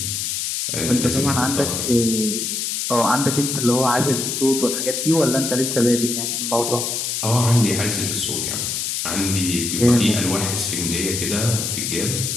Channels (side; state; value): left; noise; hiss, 2 dB below the sound